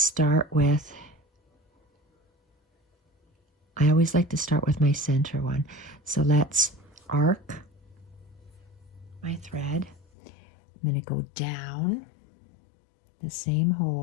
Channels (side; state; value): right; drops out; at 10.1 s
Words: with, I always like to start with my center one. So let's arc my thread. I'm going to go down the same